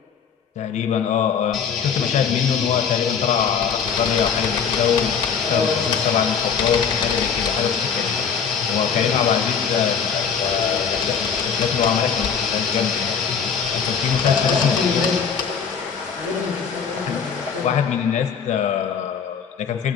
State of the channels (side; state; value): right; quieter; 6.7 dB